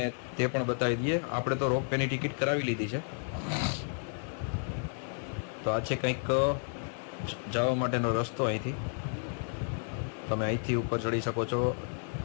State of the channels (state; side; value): silent; right; 56 dB below the other